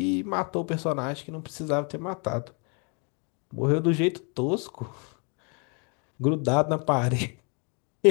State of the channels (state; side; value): quieter; right; 35.7 dB